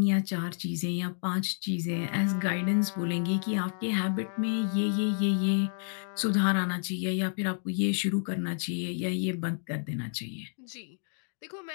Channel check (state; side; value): silent; right; digital silence